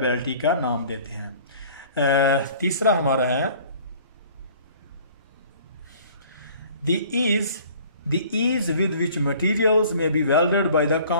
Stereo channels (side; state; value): both; inverted; correlation -0.51